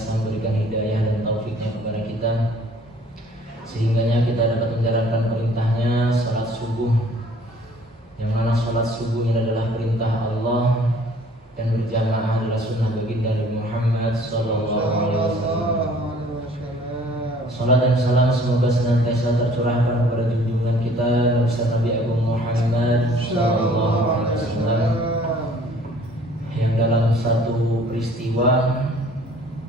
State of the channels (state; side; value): normal; both; correlation 0.54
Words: memberikan hidayah dan taufiknya kepada kita, sehingganya kita dapat menjalankan perintahnya salat subuh, yang mana salat subuh ini adalah perintah Allah dan berjamaah adalah sunnah baginda Nabi Muhammad sallallahu alaihi wasallam. Salat dan salam semoga senantiasa tercurahkan kepada junjungan kita Nabi Agung Muhammad sallallahu alaihi wasallam, yang dalam satu peristiwa